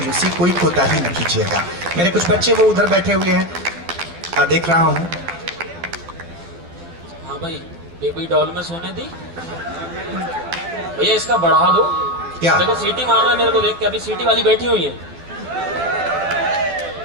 कोई कोताही न कीजिएगा। मेरे कुछ बच्चे वो उधर बैठे हुए हैं, देख रहा हूँ। हाँ भाई, बेबी डॉल में सोने दी भैया, इसका बढ़ा दो। क्या देखो सीटी मार रहा है मेरे को देख के, अभी सीटी वाली बैठी हुई है।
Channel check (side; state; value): left; late; 12 ms